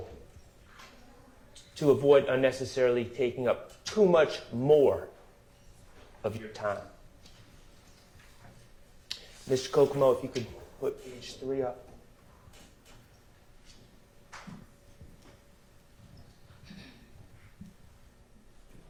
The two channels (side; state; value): both; identical; correlation 1.00